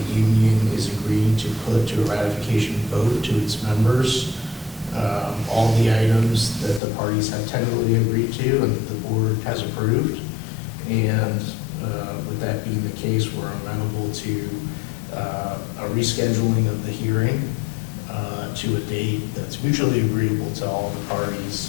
union is agreeing to put to a ratification vote to its members all the items that the parties have tentatively agreed to and that the board has approved. And with that being the case, we're amenable to a rescheduling of the hearing to a date that's mutually agreeable to all the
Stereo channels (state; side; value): drops out; right; at 6.8 s